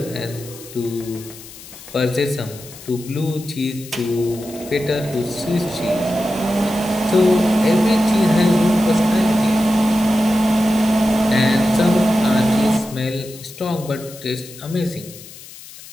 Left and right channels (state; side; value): noise; left; hiss, 17 dB below the sound